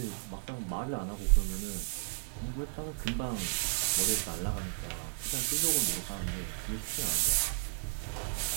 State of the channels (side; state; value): left; silent; digital silence